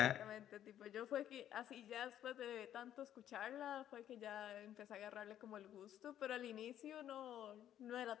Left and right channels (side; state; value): right; quieter; 11.1 dB